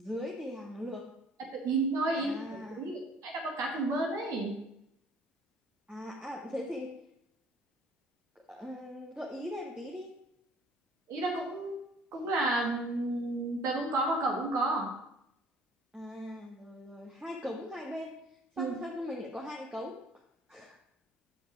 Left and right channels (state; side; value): normal; both; correlation 0.54